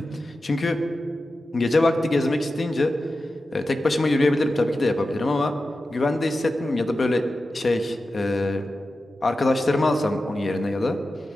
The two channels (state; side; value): normal; both; correlation 0.92